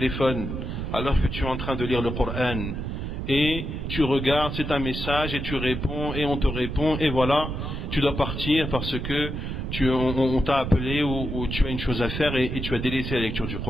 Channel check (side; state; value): right; noise; rumble, 4 dB below the sound